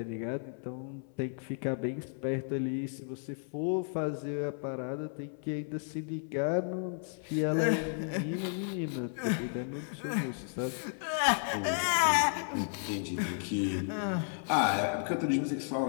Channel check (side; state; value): right; silent; 56 dB below the other